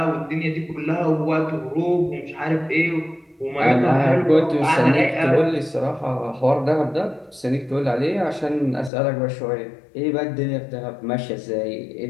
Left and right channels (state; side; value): drops out; right; at 8.9 s